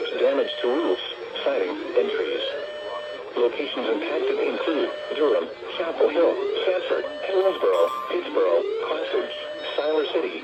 damage to roofs, siding, and trees. Locations impacted include Durham, Chapel Hill, Sanford, Hillsborough, Pittsboro, Classage, Siler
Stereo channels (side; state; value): both; identical; correlation 1.00